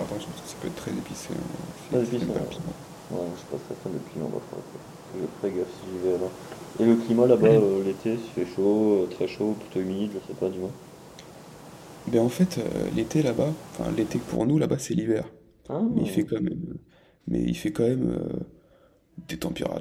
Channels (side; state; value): both; identical; correlation 1.00